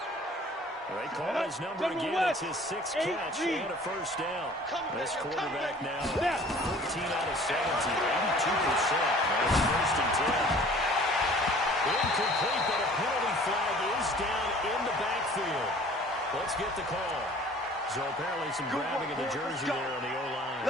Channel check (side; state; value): both; normal; correlation 0.50